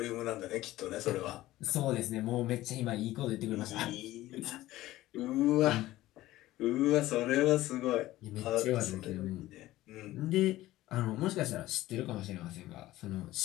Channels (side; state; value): right; quieter; 16.2 dB